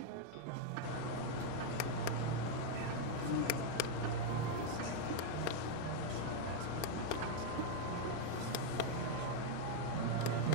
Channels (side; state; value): both; different; correlation 0.00